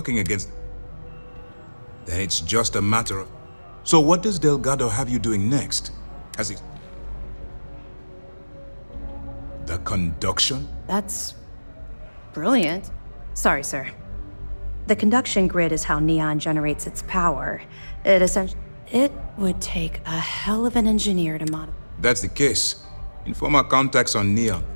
against... Then it's just a matter of... So what does Delgado have you doing next? Has he... The conduction? That's... brilliant. Sorry, sir. The conduction grid is how Neon generates its power. It would take a hell of an engineer to modify. That's the case. Inform our contacts on Neon.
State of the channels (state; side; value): inverted; both; correlation -1.00